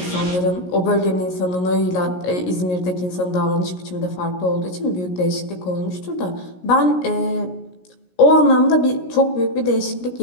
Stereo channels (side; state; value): right; late; 17 ms